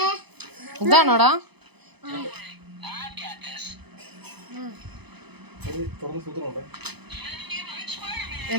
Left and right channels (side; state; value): left; late; 0.98 ms